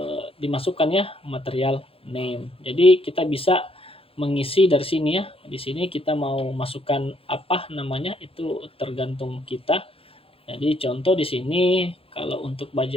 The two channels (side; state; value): right; late; 0.27 ms